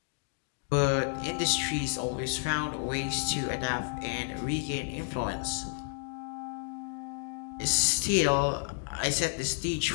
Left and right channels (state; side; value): silent; right; digital silence